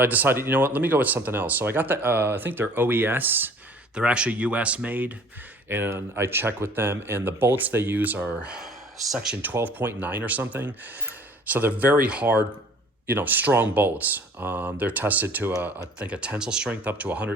I decided, you know what, let me go with something else. So I got the, I think they're OES. They're actually US made. And I checked with them, and the bolts they use are section 12.9 or something. So they're very hard, strong bolts. They're tested to, I think, a tensile strength up to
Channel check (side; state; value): both; normal; correlation 0.51